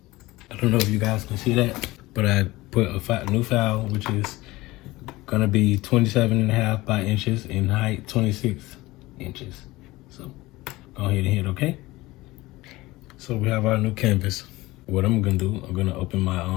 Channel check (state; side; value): quieter; right; 19.5 dB